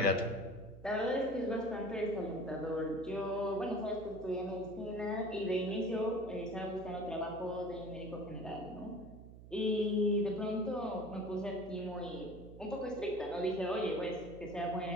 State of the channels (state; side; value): noise; right; hum, 16 dB below the sound